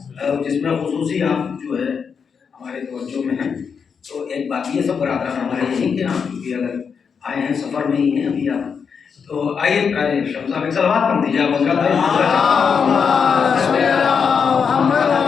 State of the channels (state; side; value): quieter; right; 6.3 dB